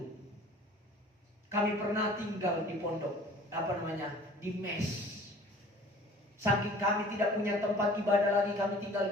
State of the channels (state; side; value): normal; both; correlation 0.48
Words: Kami pernah tinggal di pondok, di mes. Saking kami tidak punya tempat ibadah lagi, kami tinggal